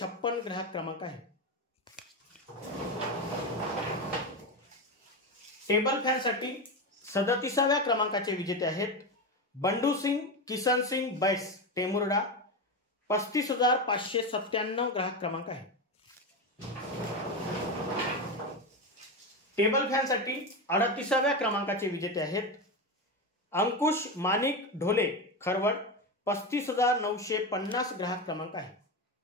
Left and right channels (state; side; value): normal; both; correlation 0.16